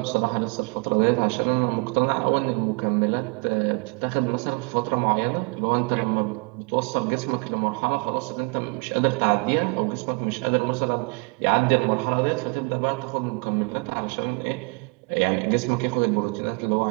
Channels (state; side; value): quieter; left; 32.2 dB